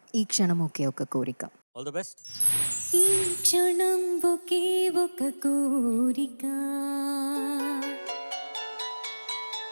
ఈ క్షణం ఒకే ఒక కోరిక. All the best. ఈ క్షణం ఒకే ఒక కోరిక,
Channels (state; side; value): inverted; both; correlation -1.00